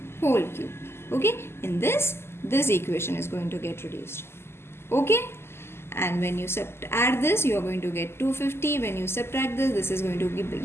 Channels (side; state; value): right; late; 0.12 ms